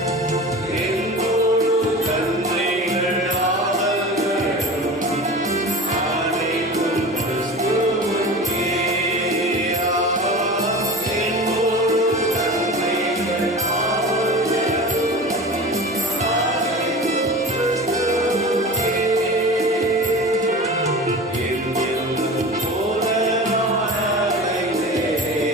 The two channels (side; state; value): both; normal; correlation 0.34